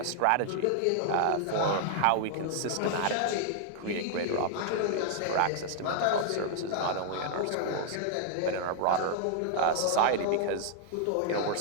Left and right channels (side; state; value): both; different; correlation -0.01